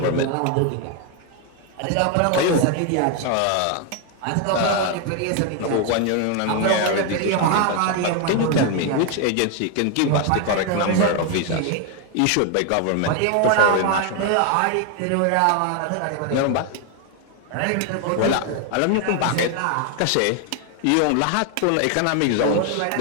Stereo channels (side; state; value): both; different; correlation 0.01